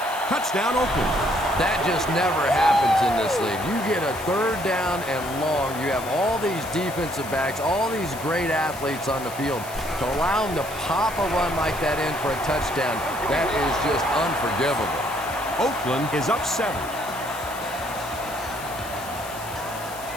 Touchdown, Oakland. That just never happens in this league. You get a 3rd down and long. You have all these defensive backs, all these great athletes on the field. To allow them to pop a run like that in for a touchdown, that is just unforgivable. Oakland is up 7.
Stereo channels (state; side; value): noise; left; hiss, 14 dB below the sound